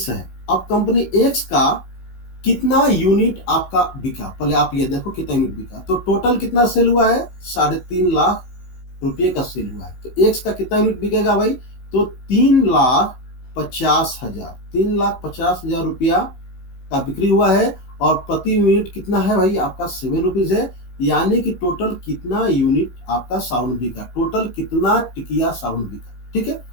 है, अब कंपनी एक्स का कितना यूनिट आपका बिका, पहले आप ये देखो कितना यूनिट बिका। तो टोटल कितना सेल हुआ है 3.5 लाख रुपये का सेल हुआ है। तो एक्स का कितना यूनिट बिकेगा भाई, तो 3,50,000, 3,50,000 रुपया का बिक्री हुआ है और प्रति यूनिट कितना है भाई आपका 7 रुपीज है। यानी कि टोटल कितना यूनिट आपका साबुन बिका, टोटल कितना टिकिया साबुन बिका। ठीक है,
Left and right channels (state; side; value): late; right; 16 ms